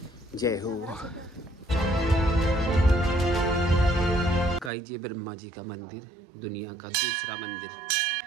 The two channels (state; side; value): drops out; left; at 4.7 s